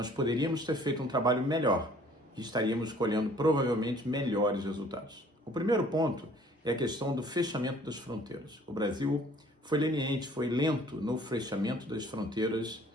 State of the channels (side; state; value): both; normal; correlation 0.55